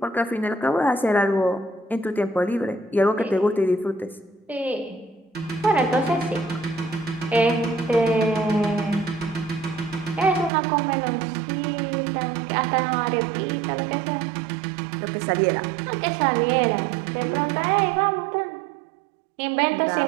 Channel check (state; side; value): drops out; left; at 10.5 s